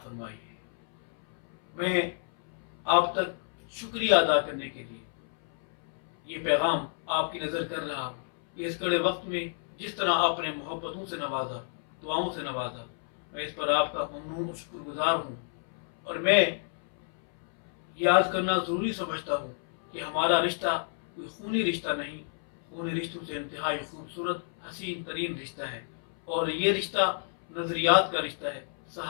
है। मैं आप तक शुक्रिया अदा करने के लिए ये पैगाम आपकी नज़र कर रहा हूँ कि इस कड़े वक्त में जिस तरह आपने मोहब्बतों से नवाजा, दुआओं से नवाजा, मैं इस पर आपका ममनून और शुक्रगुजार हूँ। और मैं याद करना ज़रूरी समझता हूँ कि हमारा रिश्ता कोई खूनी रिश्ता नहीं, खूनी रिश्तों से इंतहाई खूबसूरत हसीन तरीन रिश्ता है। और ये रिश्ता नज़रियात का रिश्ता है,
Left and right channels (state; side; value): silent; right; 58 dB below the other